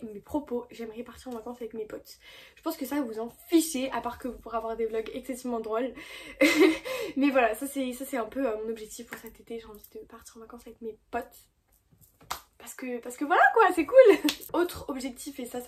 mes propos, j'aimerais partir en vacances avec mes potes. Je pense que ça vous en fichez, à part que vous pourrez avoir des vlogs excessivement drôles. Mais voilà, ça c'est un peu mon objectif pour cet été. J'ai envie de partir en vacances avec mes potes. Parce que voilà quoi, c'est cool. Autre objectif, et ça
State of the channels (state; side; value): identical; both; correlation 1.00